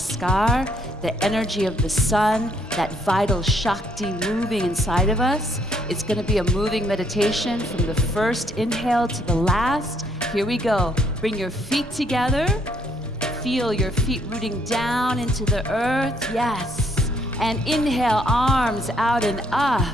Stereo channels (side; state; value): both; normal; correlation 0.69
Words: the energy of the sun, that vital Shakti moving inside of us. It's going to be a moving meditation from the first inhale to the last. Here we go. Bring your feet together. Feel your feet rooting down into the earth. Yes. And inhale, arms out and up.